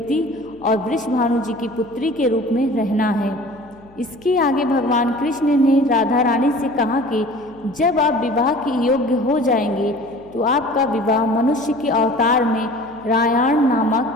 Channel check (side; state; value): left; noise; hum, 26 dB below the sound